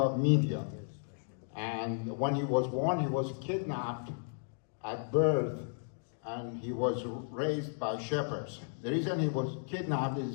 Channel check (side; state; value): right; silent; digital silence